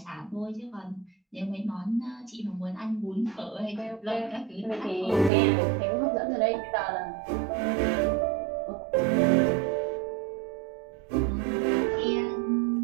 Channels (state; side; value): drops out; left; at 5.3 s